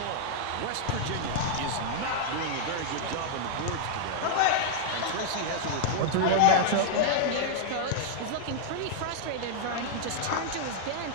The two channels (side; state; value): both; different; correlation -0.01